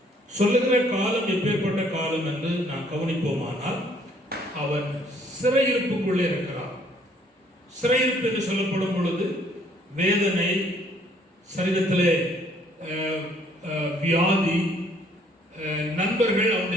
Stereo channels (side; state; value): both; normal; correlation 0.62